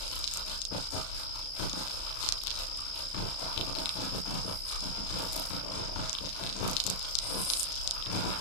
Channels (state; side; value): late; right; 35 ms